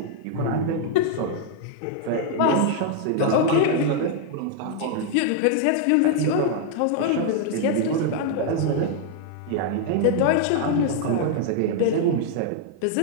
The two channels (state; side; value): different; both; correlation 0.00